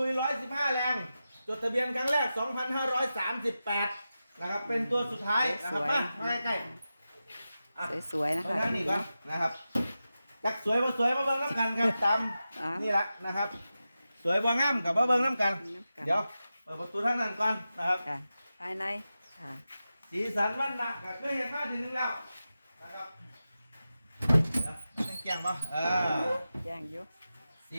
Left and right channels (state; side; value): inverted; both; correlation -0.92